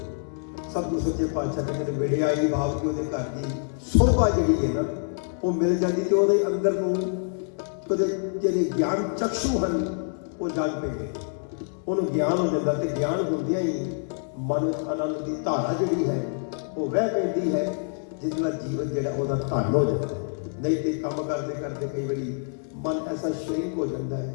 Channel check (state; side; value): silent; right; 61 dB below the other